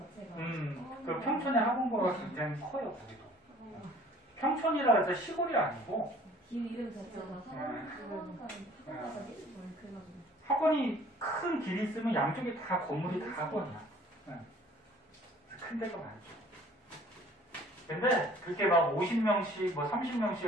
그 평촌의 학원가가 굉장히 커요, 거기도. 평촌이라 해서 시골이 아니고. 길 이름 자체가 학원 가자니? 그래가지고. 학원이 큰 길이 있으면 양쪽에 다 건물이 다 학원이야. 큰 데가 많죠. 근데 그렇게 막 50명씩, 뭐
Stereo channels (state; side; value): normal; both; correlation 0.53